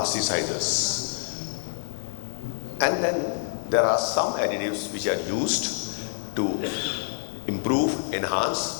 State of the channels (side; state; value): right; silent; digital silence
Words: And then there are some additives which are used to improve,